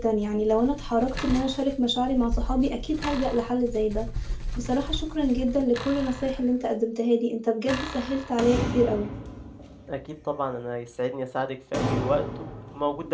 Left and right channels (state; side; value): identical; both; correlation 1.00